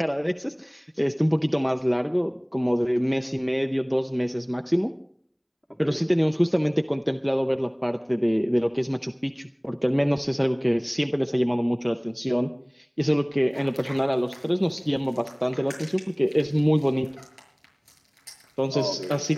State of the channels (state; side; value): identical; both; correlation 1.00